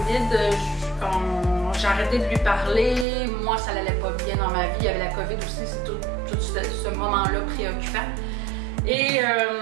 j'ai arrêté de lui parler. Moi, ça n'allait pas bien dans ma vie. Il y avait la COVID aussi, c'est tout ce moment-là préoccupant. Et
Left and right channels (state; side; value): drops out; left; at 3.1 s